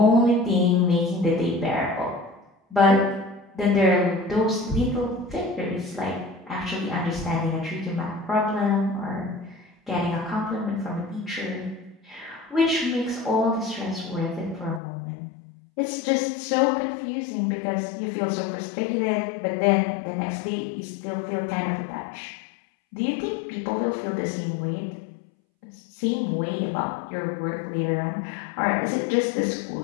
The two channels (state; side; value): drops out; right; at 14.8 s